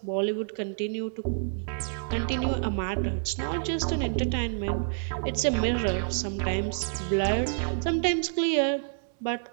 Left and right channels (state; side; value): silent; left; digital silence